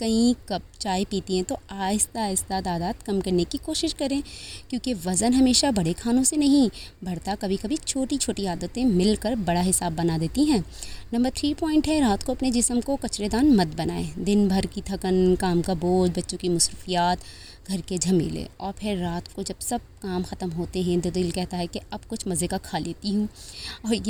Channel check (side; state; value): both; identical; correlation 1.00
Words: कप चाय पीती हैं तो आहिस्ता आहिस्ता तादाद कम करने की कोशिश करें, क्योंकि वज़न हमेशा बड़े खानों से नहीं बढ़ता, कभी कभी छोटी छोटी आदतें मिलकर बड़ा हिसाब बना देती हैं। नंबर 3 पॉइंट है, रात को अपने जिस्म को कचरेदान मत बनाएं। दिन भर की थकन, काम का बोझ, बच्चों की मसरूफियात, घर के झमेले, और फिर रात को जब सब काम ख़त्म होते हैं तो दिल कहता है कि अब कुछ मज़े का खा लेती हूँ। और